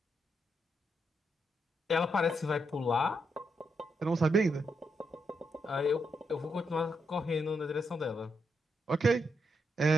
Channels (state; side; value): normal; both; correlation 0.81